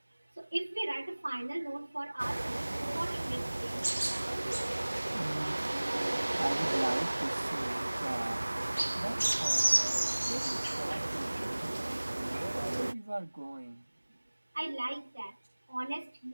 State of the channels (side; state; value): both; inverted; correlation -1.00